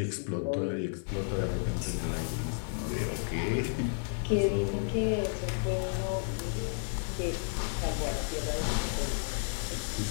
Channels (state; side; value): silent; right; digital silence